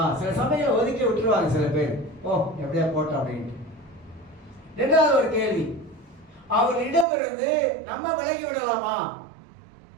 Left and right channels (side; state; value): left; drops out; at 7.1 s